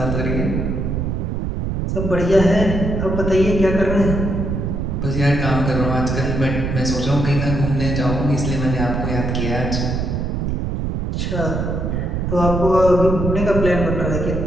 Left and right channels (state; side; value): noise; right; rumble, 1 dB below the sound